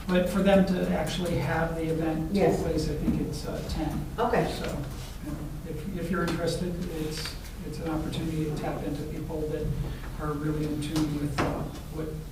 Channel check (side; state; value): both; identical; correlation 1.00